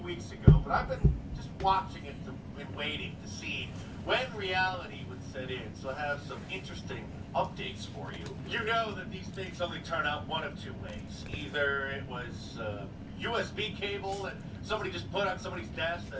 ago, but I've been just watching it and waiting to see when reality would set in. So I have some interesting updates for you. You know that these things only turn out one of two ways. Either it was a USB cable that somebody just put on somebody's desk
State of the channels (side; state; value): both; identical; correlation 1.00